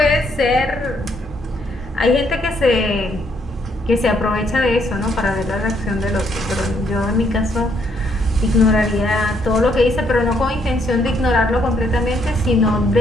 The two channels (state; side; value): normal; both; correlation 0.71